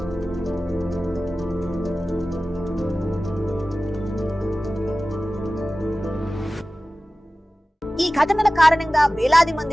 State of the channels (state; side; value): normal; both; correlation 0.97